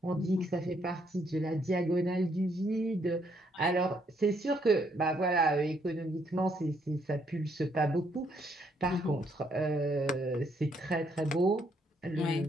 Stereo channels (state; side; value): normal; both; correlation 0.71